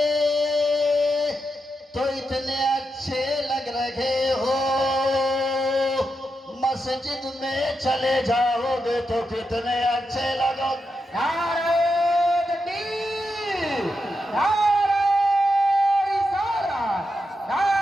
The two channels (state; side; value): normal; both; correlation 0.86